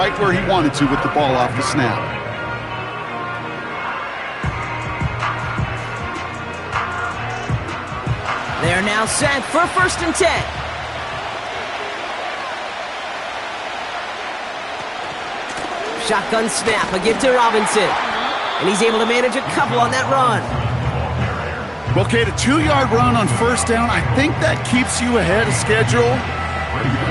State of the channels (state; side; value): identical; both; correlation 1.00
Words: where he wanted to with the ball off the snap. They're now set for 1st and 10. Shotgun snap, a give to Robinson. And he's able to manage a couple on that run. Well, Kate, a 2-yard run on first down, I think that keeps you ahead of schedule. But you're